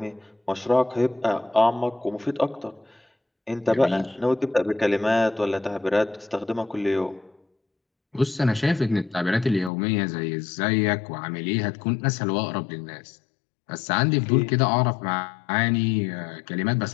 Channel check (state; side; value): drops out; right; at 9.7 s